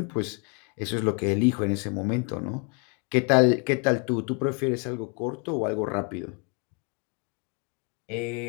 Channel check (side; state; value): right; quieter; 36.1 dB